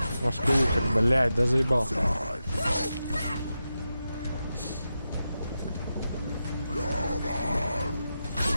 Маскулка, блять, да заебал.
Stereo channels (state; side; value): inverted; both; correlation -0.89